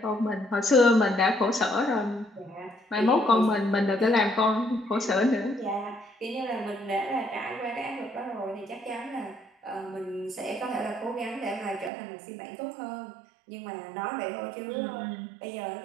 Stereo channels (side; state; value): left; drops out; at 11.9 s